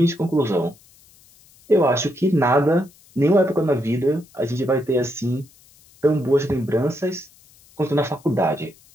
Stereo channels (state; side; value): noise; left; hiss, 28 dB below the sound